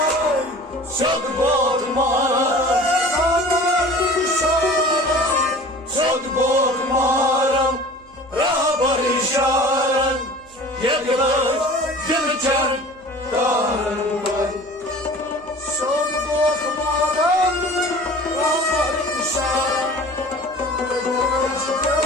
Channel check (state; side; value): noise; right; hum, 27 dB below the sound